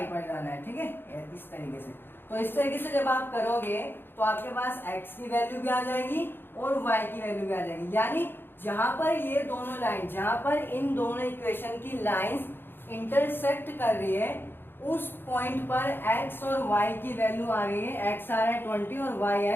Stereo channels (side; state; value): right; late; 0.10 ms